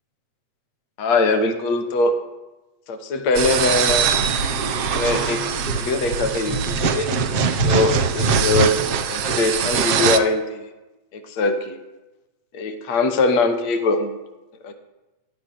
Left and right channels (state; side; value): late; right; 7.6 ms